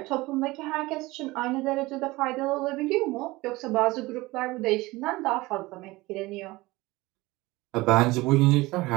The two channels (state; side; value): quieter; left; 20.6 dB